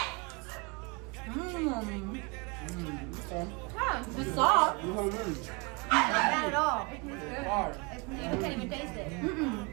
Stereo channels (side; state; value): left; quieter; 29.8 dB